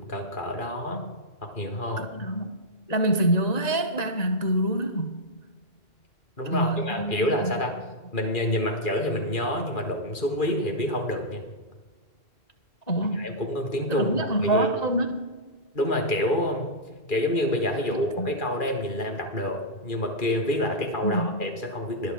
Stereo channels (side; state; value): right; late; 1.9 ms